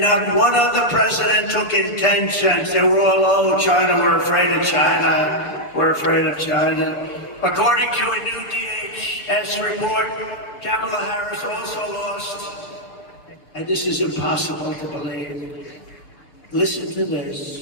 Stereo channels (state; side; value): late; right; 6.8 ms